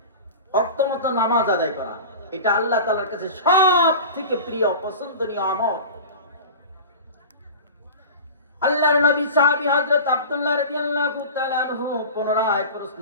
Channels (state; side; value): inverted; both; correlation -0.34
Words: ওয়াক্তমতো নামাজ আদায় করা। এটা আল্লাহ তাআলার কাছে সবথেকে প্রিয় পছন্দনীয় আমল। আল্লাহর নবী সাহাবী হযরত আব্দুল্লাহ রাদিয়াল্লাহু তাআলা আনহু পুনরায় প্রশ্ন